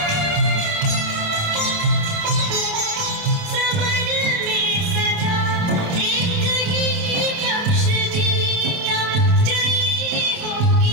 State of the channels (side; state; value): left; late; 28 ms